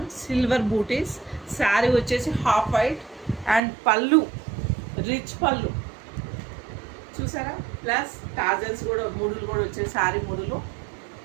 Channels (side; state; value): left; drops out; at 3.6 s